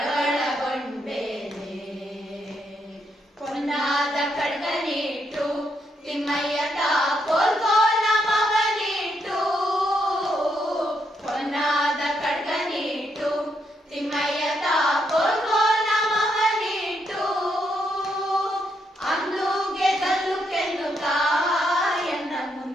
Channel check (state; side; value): normal; both; correlation 0.78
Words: ಪೊನ್ನಾದ ಖಡ್ಗನಿಟ್ಟು ತಿಮ್ಮಯ್ಯ ಕೋಲ್ಗೋಲ ಮಗನಿಟ್ಟು ಪೊನ್ನಾದ ಖಡ್ಗನಿಟ್ಟು ತಿಮ್ಮಯ್ಯ ಕೋಲ್ಗೋಲ ಮಗನಿಟ್ಟು ಅಂದುಗೆ ಗಲ್ಲು ಕೆನ್ನುತ್ತಾ ಎನ್ನ